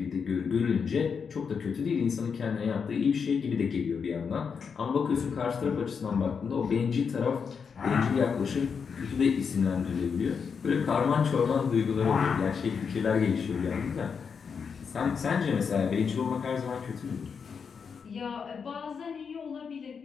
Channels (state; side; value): quieter; right; 6.1 dB